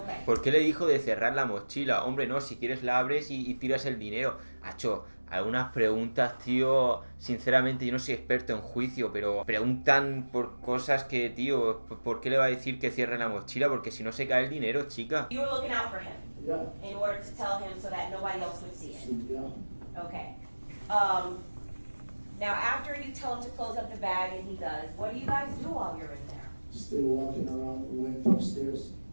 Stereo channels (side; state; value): both; inverted; correlation -1.00